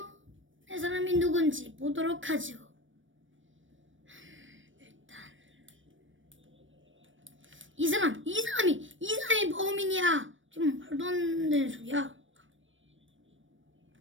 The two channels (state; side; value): late; left; 0.56 ms